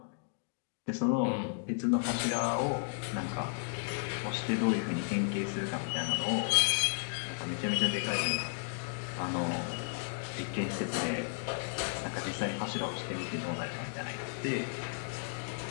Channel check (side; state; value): right; silent; digital silence